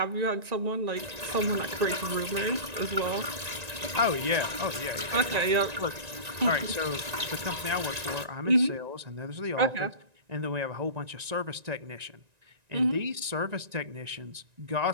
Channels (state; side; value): late; left; 1.9 ms